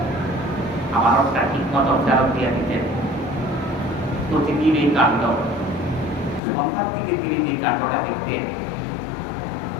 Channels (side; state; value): right; drops out; at 6.4 s